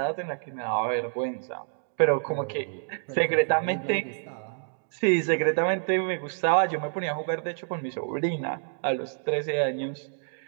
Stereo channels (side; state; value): left; silent; digital silence